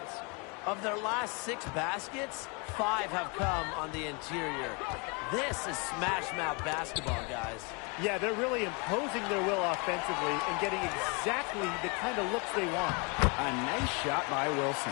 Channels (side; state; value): right; quieter; 31.6 dB